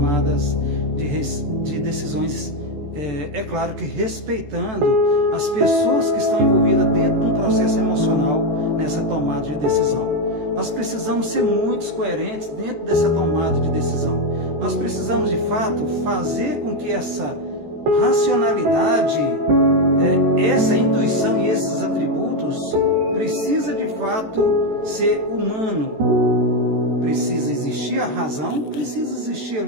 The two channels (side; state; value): left; late; 14 ms